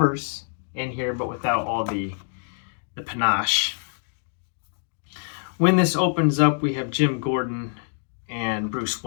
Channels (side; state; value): right; silent; 59 dB below the other